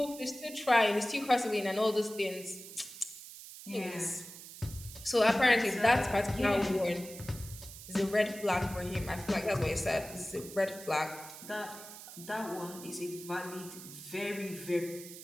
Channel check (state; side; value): noise; right; hiss, 14 dB below the sound